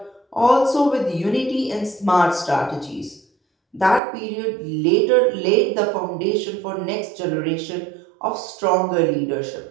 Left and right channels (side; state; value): left; drops out; at 4.0 s